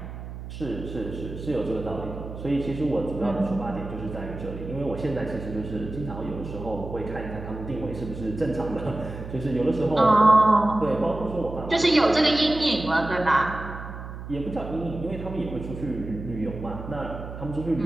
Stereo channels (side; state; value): right; noise; hum, 10 dB below the sound